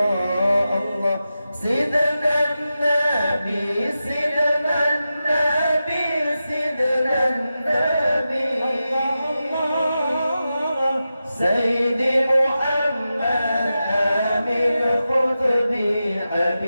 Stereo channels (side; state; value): both; inverted; correlation -0.91